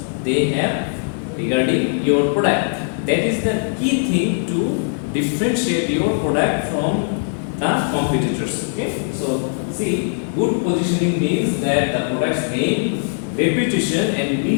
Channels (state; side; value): silent; right; digital silence